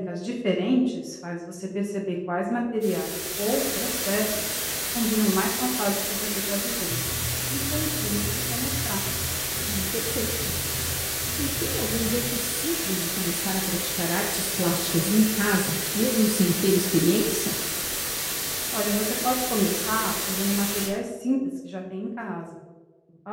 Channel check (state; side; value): identical; both; correlation 1.00